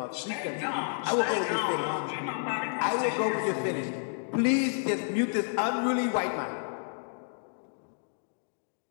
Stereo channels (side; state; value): right; silent; digital silence